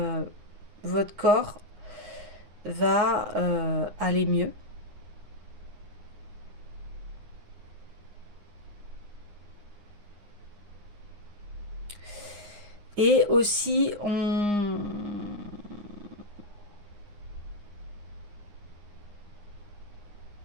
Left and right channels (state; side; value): late; left; 9.7 ms